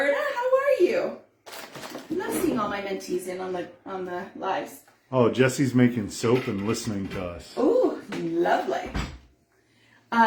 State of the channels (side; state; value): both; identical; correlation 1.00